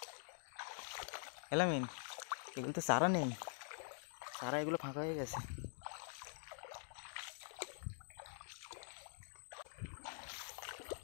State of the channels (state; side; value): silent; right; digital silence